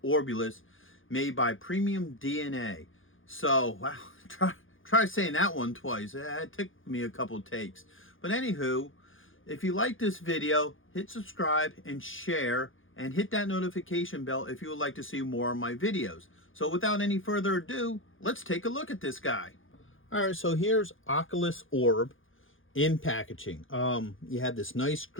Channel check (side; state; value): right; late; 0.58 ms